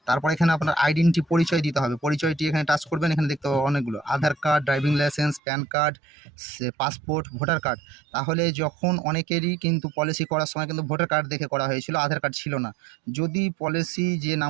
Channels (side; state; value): left; drops out; at 5.4 s